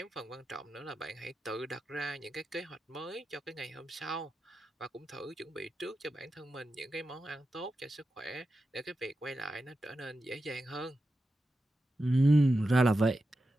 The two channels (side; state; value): both; normal; correlation 0.90